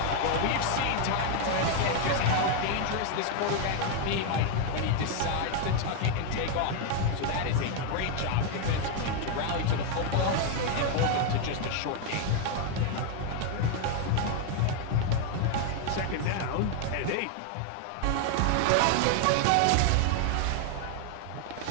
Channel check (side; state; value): both; different; correlation 0.00